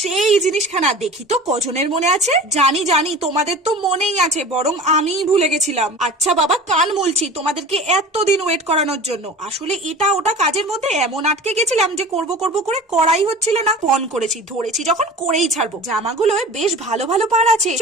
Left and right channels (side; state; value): both; normal; correlation 0.38